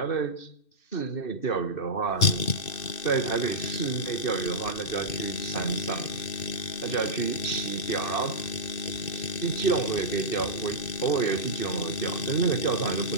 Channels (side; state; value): right; late; 2.6 ms